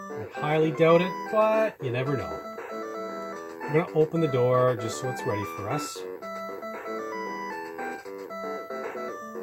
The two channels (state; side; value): identical; both; correlation 1.00